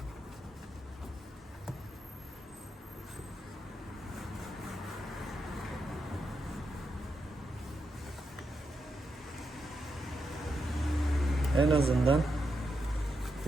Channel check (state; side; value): normal; both; correlation 0.84